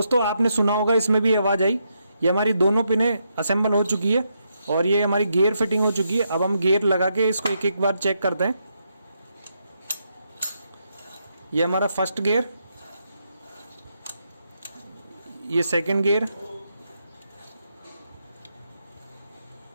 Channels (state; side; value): inverted; both; correlation -0.80